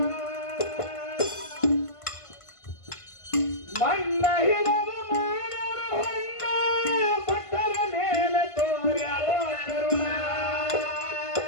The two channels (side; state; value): right; late; 1.5 ms